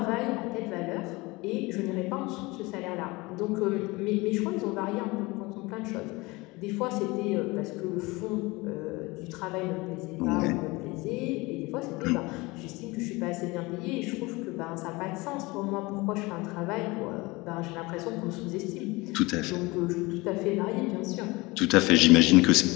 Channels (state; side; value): quieter; right; 23.2 dB